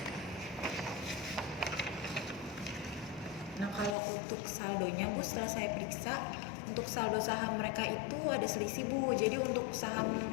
Nah kalau untuk saldonya Bu, setelah saya periksa, untuk saldo saham mereka itu ada selisih Bu. Jadi untuk saham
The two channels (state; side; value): drops out; right; at 4.0 s